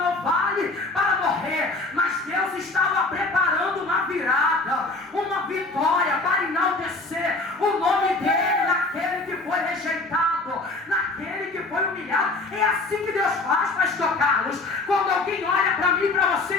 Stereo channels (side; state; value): right; quieter; 3.2 dB